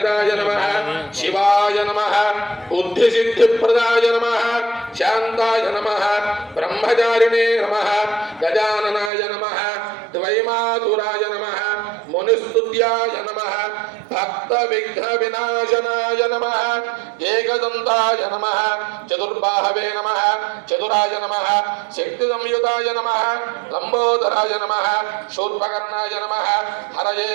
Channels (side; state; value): left; drops out; at 9.1 s